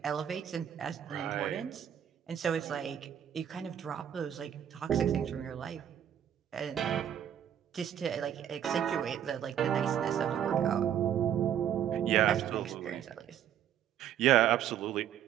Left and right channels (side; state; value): left; quieter; 9.9 dB